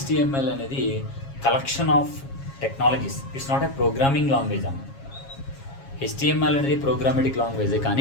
అనేది collection of technologies. It's not a programming language అన్న. HTML అనేది ప్రోగ్రామెటిక్ లాంగ్వేజ్,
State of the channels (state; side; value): late; right; 7.3 ms